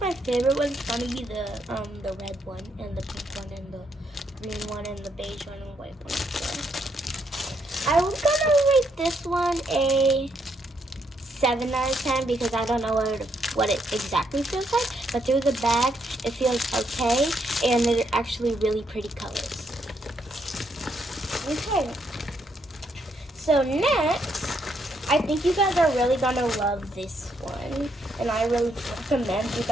my favorite one's gonna be the red one, and the pink one, and the green one, and the beige one, and the white one. So I was gonna rate this one a 7 out of 10 because I don't know what it exactly feels like, but through the bag it feels okay, and they're actually really pretty colors. Okay, so next, I think you guys are really gonna love this one, and I really recommend you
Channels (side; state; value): both; normal; correlation 0.75